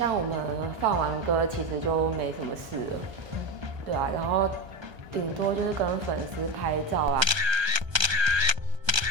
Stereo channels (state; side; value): late; left; 1.3 ms